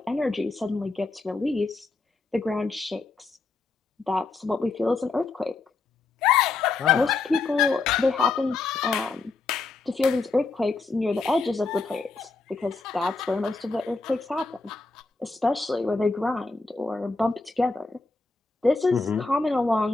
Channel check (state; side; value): quieter; right; 3.9 dB